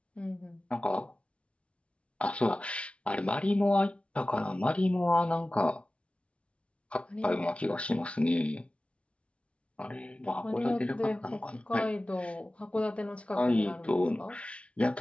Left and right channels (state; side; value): late; right; 0.061 ms